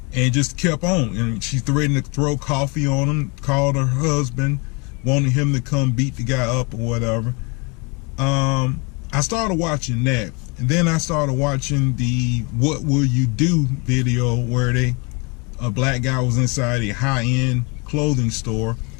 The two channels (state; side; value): quieter; right; 30.4 dB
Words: and just kept on, and she threatened to throw coffee on him, called her husband, wanted him to come beat the guy up or whatever. I started watching that, and then I started watching the "What Will You Do" video where a black guy was inside a high-end clothing store,